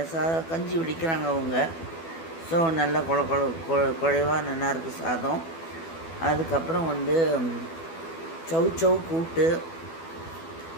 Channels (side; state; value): right; late; 12 ms